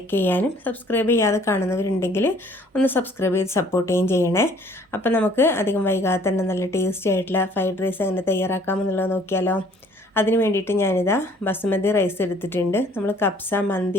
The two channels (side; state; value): both; normal; correlation 0.57